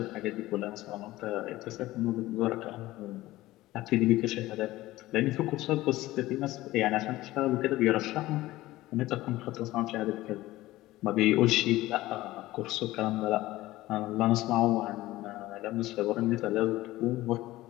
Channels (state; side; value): quieter; right; 17.3 dB